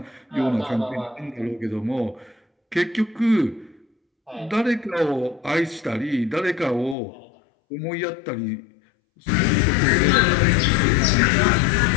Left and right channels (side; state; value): right; drops out; at 7.0 s